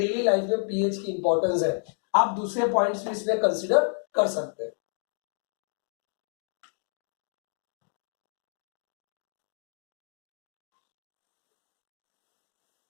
लाइफ में पीएच की इंपॉर्टेंस है. आप दूसरे पॉइंट्स भी इसमें कंसीडर कर सकते हैं.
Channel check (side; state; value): right; silent; 58 dB below the other